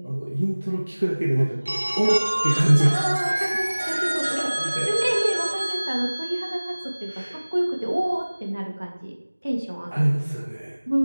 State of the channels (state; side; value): inverted; both; correlation -1.00